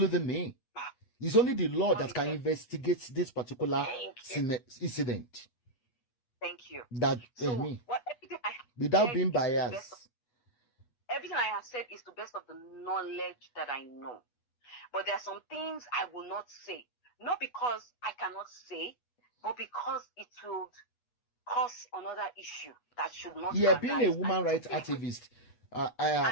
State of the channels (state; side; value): late; right; 8.2 ms